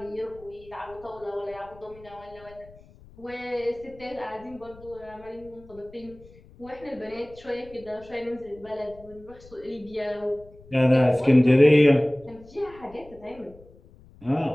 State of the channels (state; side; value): noise; left; rumble, 23 dB below the sound